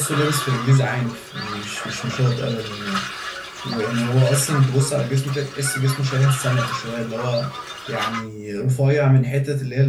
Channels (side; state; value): both; identical; correlation 1.00